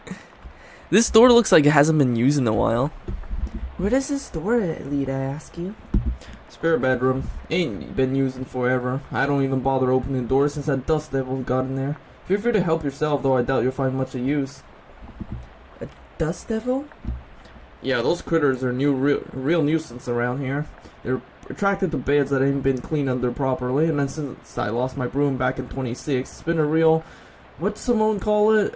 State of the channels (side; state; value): both; identical; correlation 1.00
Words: This door looks like it hasn't been used in a while. Where does this door lead, I ask you? Spare bedroom. Ain't been used in forever. I don't even bother opening doors since that dust devil got in there. Feel free to help yourself, though I doubt you'll find much of use. A dust devil? Yeah, those critters are real nuisance around here. They're attracted to beds that ain't been cleaned under properly, and then since I lost my broom back in 26, it's been a real, what's someone call